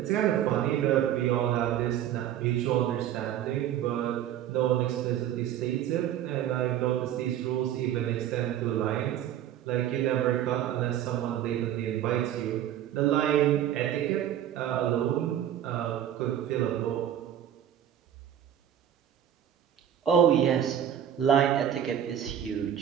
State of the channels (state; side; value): quieter; left; 10.8 dB